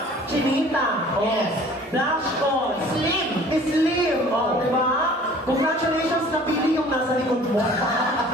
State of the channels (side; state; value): both; normal; correlation 0.49